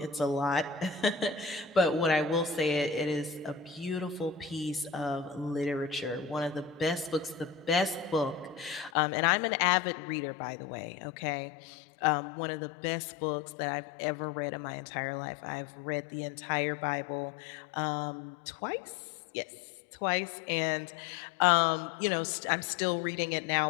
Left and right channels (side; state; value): right; drops out; at 8.9 s